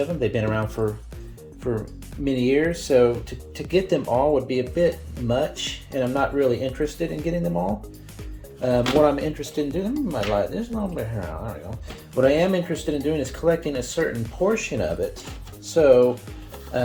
them. They've been around for many years, so to get them all would be a bit much, and I'm not really interested in getting them all. What I'm interested in doing, there's a little bit here. There we go. What I am interested in doing is collecting a certain portion of it. So,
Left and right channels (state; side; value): identical; both; correlation 1.00